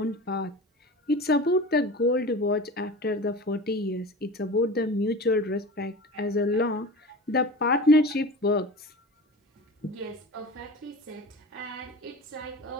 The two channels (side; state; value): both; normal; correlation 0.34